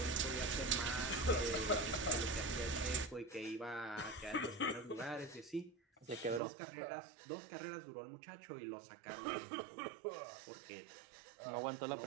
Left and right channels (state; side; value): drops out; left; at 6.4 s